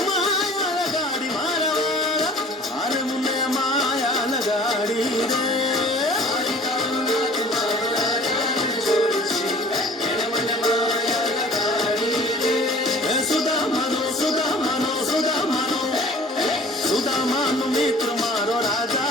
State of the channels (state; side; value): normal; both; correlation 0.48